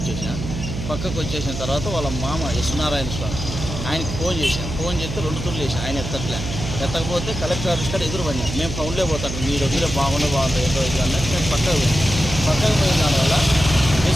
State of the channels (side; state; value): right; noise; hum, 6 dB below the sound